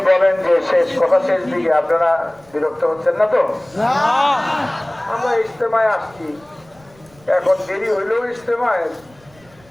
বলেন যে শেষ কথা শেষ দিকে আপনারা বিরক্ত হচ্ছেন না তো? আমরা ইজতেমায় আসছি, এখন দেরি হইলেও ইজতেমায়,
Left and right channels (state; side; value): noise; right; rumble, 29 dB below the sound